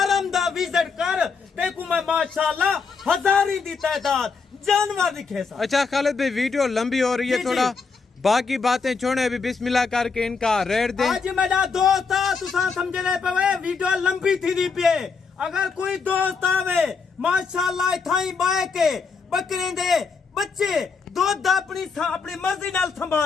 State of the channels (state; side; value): quieter; right; 5.0 dB